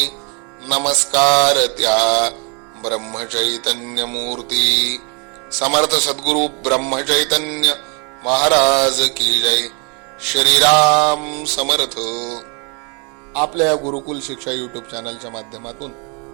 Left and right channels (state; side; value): quieter; left; 34.9 dB